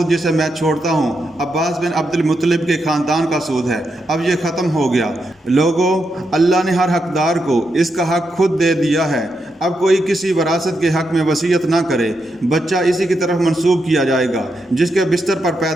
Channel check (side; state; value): both; normal; correlation 0.83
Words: جسے میں چھوڑتا ہوں عباس بن عبد المطلب کے خاندان کا سود ہے، اب یہ ختم ہو گیا۔ لوگوں، اللہ نے ہر حقدار کو اس کا حق خود دے دیا ہے۔ اب کوئی کسی وراثت کے حق میں وصیت نہ کرے۔ بچہ اسی کی طرف منسوب کیا جائے گا جس کے بستر پر